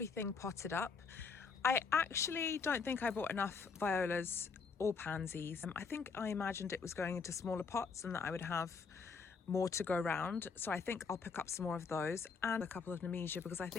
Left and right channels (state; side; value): quieter; right; 5.2 dB